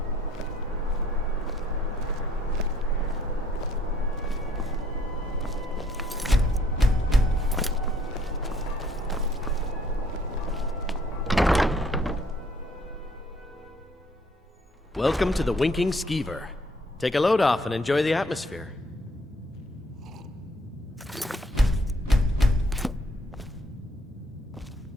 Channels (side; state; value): both; normal; correlation 0.64